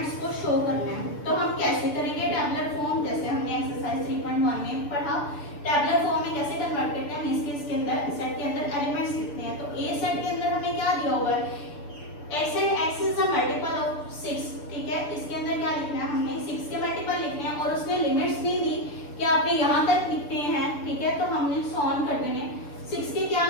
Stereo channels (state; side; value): late; right; 6.8 ms